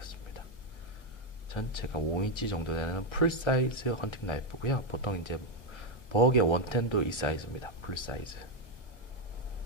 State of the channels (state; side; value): late; right; 1.3 ms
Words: 전체가 5인치 정도 되는 풀사이즈 헌팅 나이프고요. 보통 이제 버그의 원텐도 이 사이즈입니다. 풀사이즈.